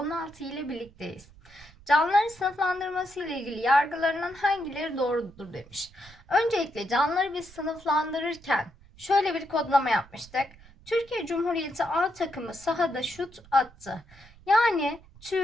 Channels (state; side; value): noise; right; rumble, 24 dB below the sound